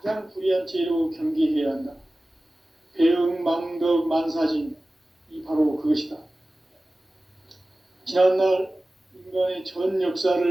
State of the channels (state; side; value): normal; both; correlation 0.97